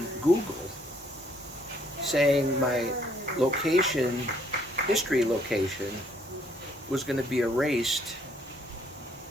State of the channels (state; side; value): normal; both; correlation 0.66